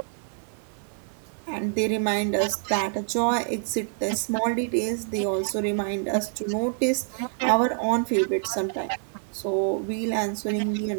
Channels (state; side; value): silent; left; digital silence